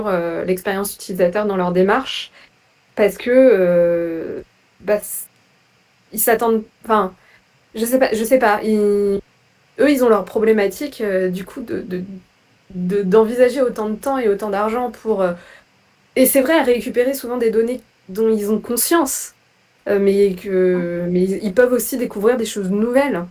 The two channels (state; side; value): identical; both; correlation 1.00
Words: l'expérience utilisateur dans leur démarche parce que bah, ils s'attendent. Enfin, je sais pas. Eux, ils ont leur problématique du coup d'envisager autant de temps et autant d'argent pour. Et c'est vrai, à récupérer souvent des données dont ils ont conscience mais ils peuvent aussi découvrir des choses nouvelles.